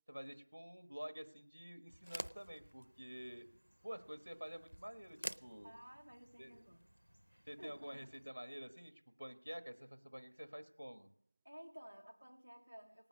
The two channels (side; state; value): both; inverted; correlation -1.00